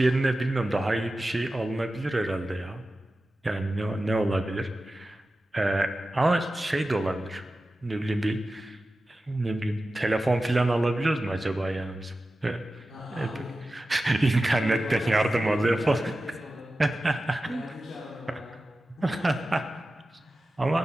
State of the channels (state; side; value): normal; both; correlation 0.94